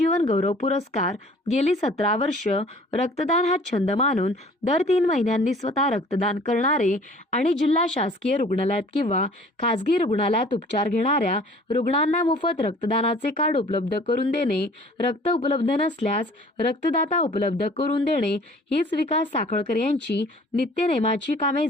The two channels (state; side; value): normal; both; correlation 0.51